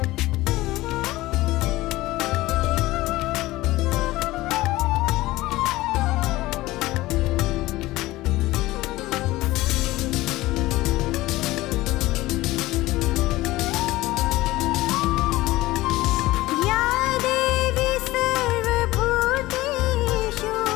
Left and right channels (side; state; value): right; quieter; 18.2 dB